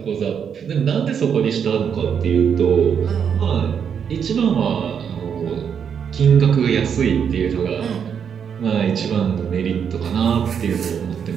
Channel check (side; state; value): left; quieter; 7.5 dB